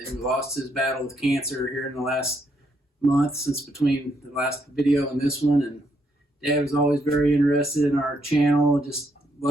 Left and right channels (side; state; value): both; normal; correlation 0.74